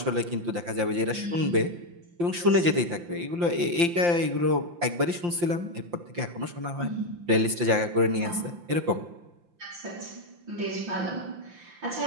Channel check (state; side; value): late; left; 5.8 ms